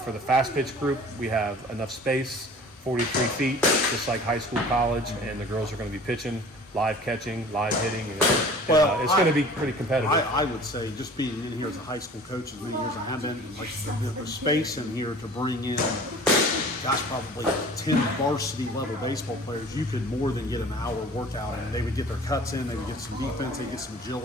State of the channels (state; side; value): normal; both; correlation 0.45